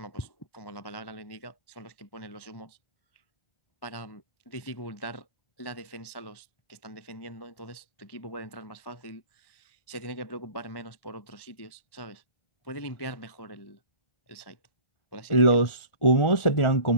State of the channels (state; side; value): late; right; 1.1 ms